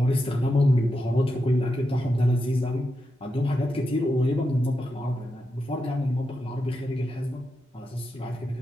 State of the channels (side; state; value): both; normal; correlation 0.87